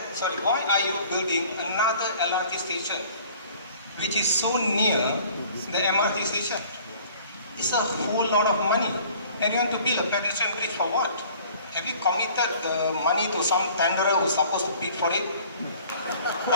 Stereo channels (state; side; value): inverted; both; correlation -0.51